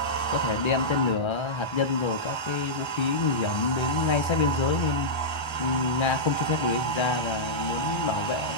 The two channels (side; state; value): right; late; 1.3 ms